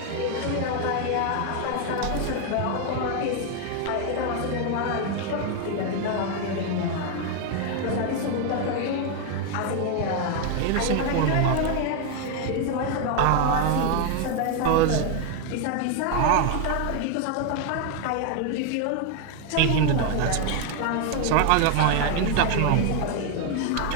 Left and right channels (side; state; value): both; different; correlation 0.01